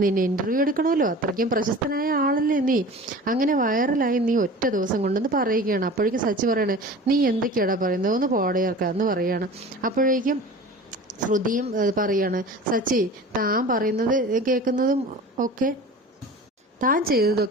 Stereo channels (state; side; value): normal; both; correlation 0.39